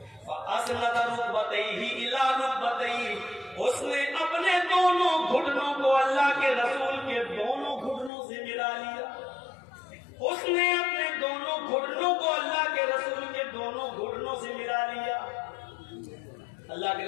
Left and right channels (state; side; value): drops out; right; at 8.1 s